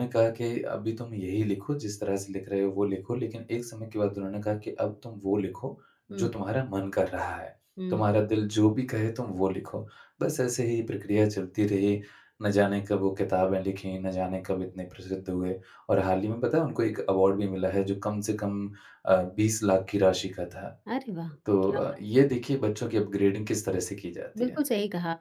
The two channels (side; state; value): both; identical; correlation 1.00